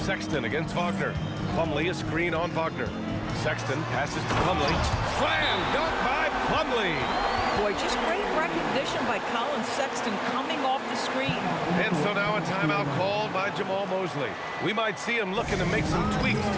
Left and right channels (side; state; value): both; identical; correlation 1.00